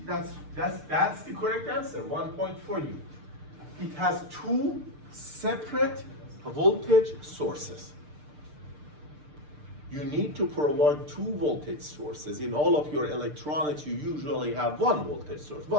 That's the correct answer. 1 point for you. It has two separate voltage sources. You need to provide two voltage sources. In all of your electronics, you usually have one voltage source,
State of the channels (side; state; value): left; late; 6.7 ms